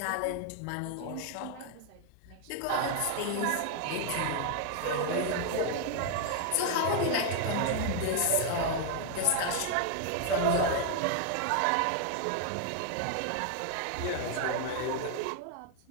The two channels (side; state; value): both; different; correlation 0.00